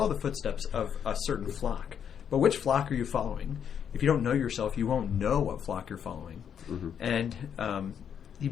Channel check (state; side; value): quieter; right; 8.2 dB